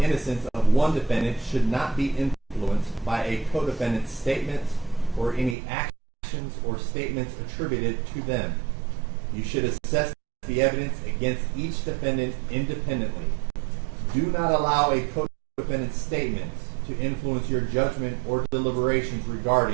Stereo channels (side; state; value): left; drops out; at 5.6 s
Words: of one defendant should not be influenced by a co-defendant's statements or any actions or statements attributed to them. You should assess the evidence against each defendant independently. Do not allow a co-defendant's statements to influence your judgment or deliberations